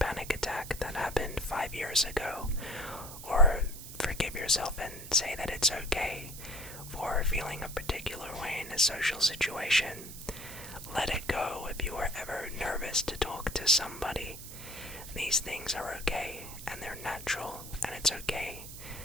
attack that happened 5 years ago, or forgive yourself and say that it's okay for feeling a particular way in a social situation. Let it go if you are ever nervous to talk to somebody. These things are okay, and they're natural, and it's okay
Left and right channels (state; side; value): noise; right; hiss, 12 dB below the sound